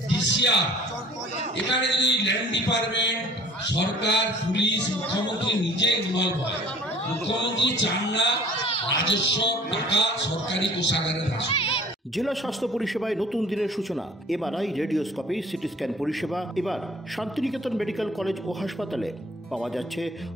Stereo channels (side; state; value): both; normal; correlation 0.50